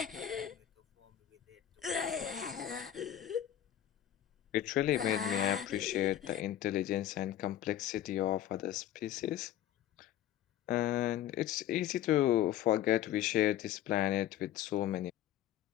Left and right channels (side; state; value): right; quieter; 11.8 dB